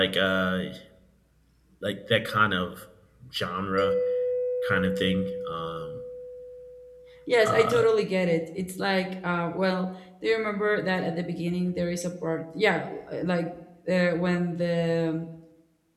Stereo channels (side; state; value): both; identical; correlation 1.00